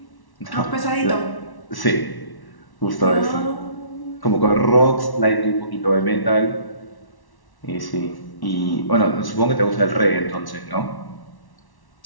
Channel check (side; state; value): right; late; 1.1 ms